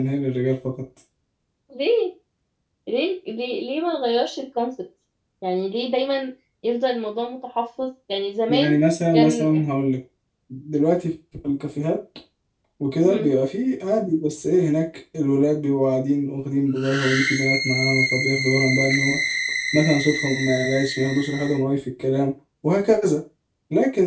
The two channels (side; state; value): both; identical; correlation 1.00